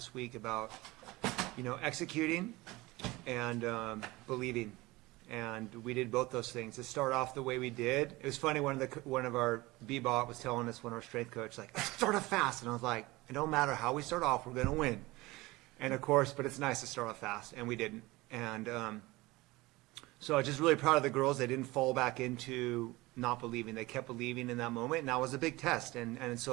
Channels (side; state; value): left; quieter; 20.9 dB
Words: week about, executing and believing. And we did both those things. To start off the way we did, it was funny. One of our B-bot was telling us, one of our strength coach, like, start off fast. And I was like, it don't matter how we start off, we're gonna win. And of course, but it's nice to start off fast, and we didn't. And so I was just really proud of the girls. They didn't fall back into not believing. They kept believing in that moment, and that was a big test. And